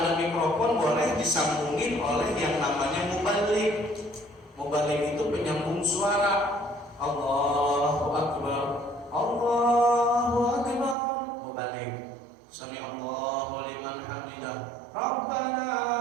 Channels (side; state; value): left; drops out; at 11.0 s